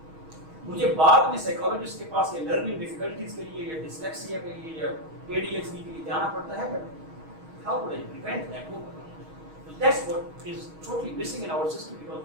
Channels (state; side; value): late; left; 6.3 ms